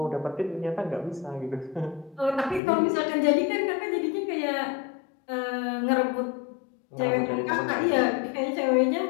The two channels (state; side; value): drops out; right; at 2.6 s